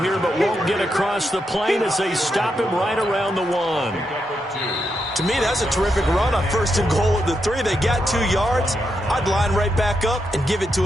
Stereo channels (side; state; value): both; normal; correlation 0.83